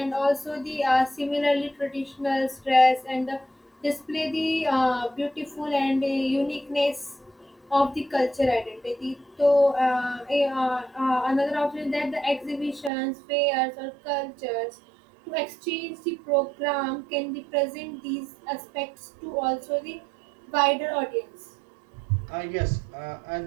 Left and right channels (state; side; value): drops out; left; at 12.9 s